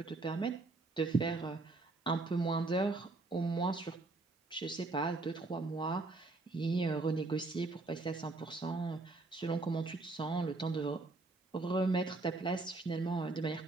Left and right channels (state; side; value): quieter; left; 3.3 dB